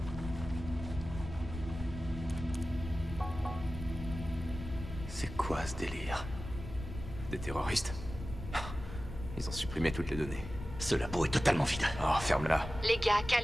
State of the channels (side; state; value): left; noise; rumble, 9 dB below the sound